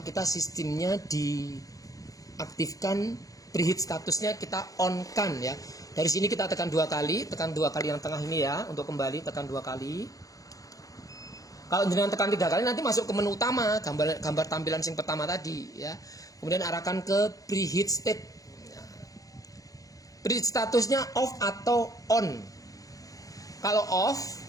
kita sistemnya diaktifkan, preheat statusnya kita on kan ya. Dari sini kita tekan 2 kali, yang tengah ini ya, untuk kembali tekan 2 kali. Kalau jenengan tekan 3 kali nanti masuk ke menu utama, gambar tampilan yang pertama tadi ya. Kemudian arahkan ke preheat state. Preheat statusnya off atau on. Kalau off,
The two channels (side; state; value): right; late; 0.17 ms